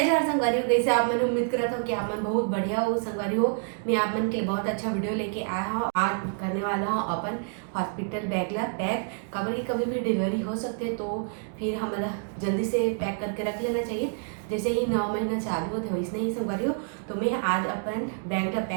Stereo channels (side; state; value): left; silent; 60 dB below the other